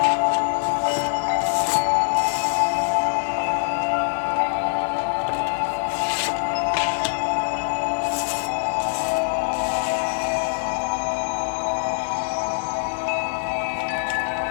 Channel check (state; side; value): silent; right; digital silence